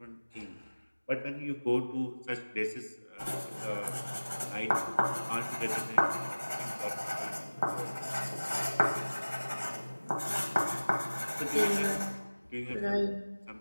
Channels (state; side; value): inverted; both; correlation -1.00